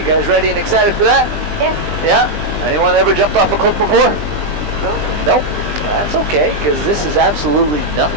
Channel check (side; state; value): left; late; 20 ms